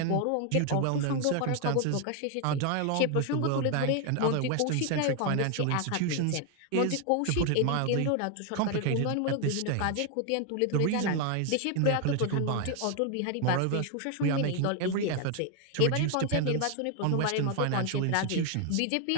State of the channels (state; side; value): different; both; correlation 0.01